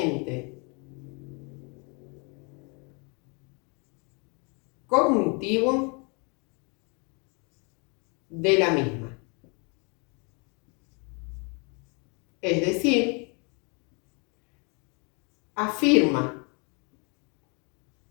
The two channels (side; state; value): right; quieter; 33.5 dB